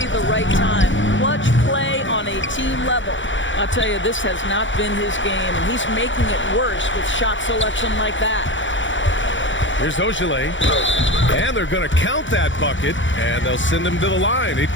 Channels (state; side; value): late; right; 0.55 ms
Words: the right time. Clutch play on a team level. I'll tell you, this has not been his game, and he's making it worse with shot selection like that. Here's Ogilvy. And they're going to count that bucket, and they'll send him to the line. It